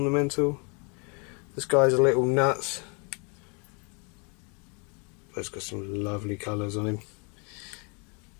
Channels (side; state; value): right; quieter; 34.1 dB